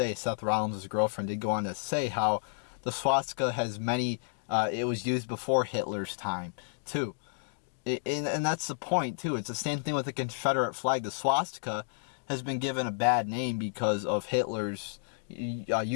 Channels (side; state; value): right; silent; digital silence